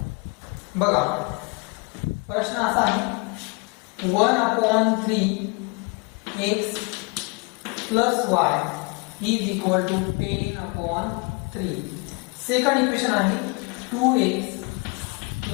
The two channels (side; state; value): right; quieter; 31.4 dB